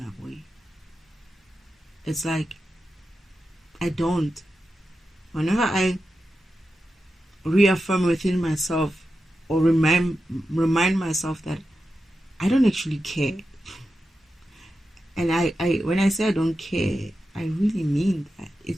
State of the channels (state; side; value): normal; both; correlation 0.90